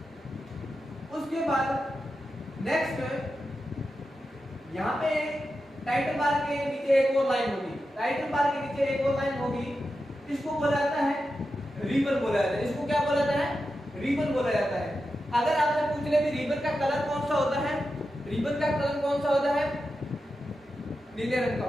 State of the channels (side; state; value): both; normal; correlation 0.90